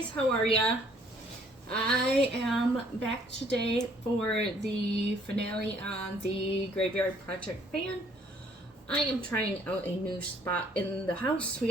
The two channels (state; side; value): normal; both; correlation 0.62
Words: how are ya? I am back today for the finale on the Graveyard Project fan. I am trying out a new spot in the house. We